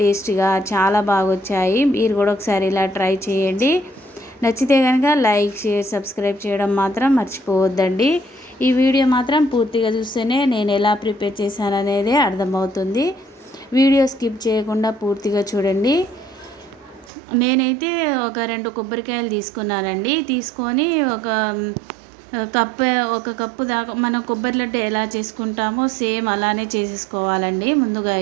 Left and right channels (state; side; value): drops out; left; at 17.1 s